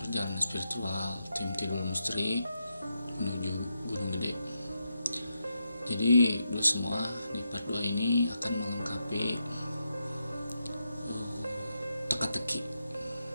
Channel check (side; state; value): both; inverted; correlation -0.85